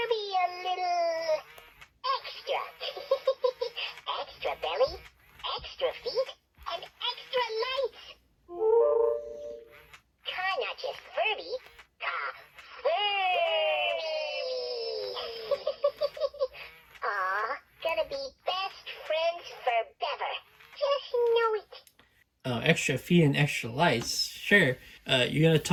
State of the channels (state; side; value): identical; both; correlation 1.00